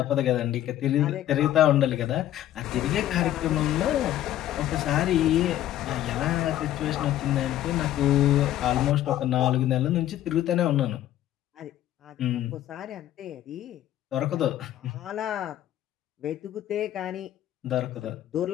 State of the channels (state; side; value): quieter; right; 12.8 dB